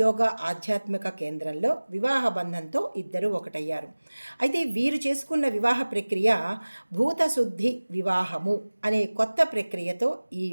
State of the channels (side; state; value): both; inverted; correlation -1.00